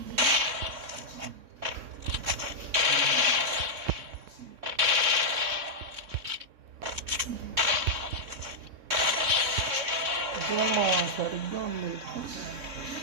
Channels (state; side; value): late; left; 3.6 ms